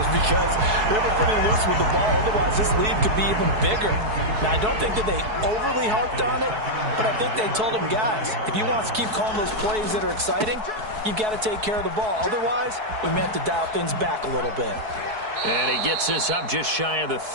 because they were pretty loose with the ball. Otherwise, this lead could be even bigger. Now, I don't think that they overly harped on it, but I think they told them, guys, if you want to keep calling those plays that are exciting, you've got to take care of the ball. Otherwise, we may have to dial things back a little bit. And he gets this up just shy of the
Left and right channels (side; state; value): left; late; 4.7 ms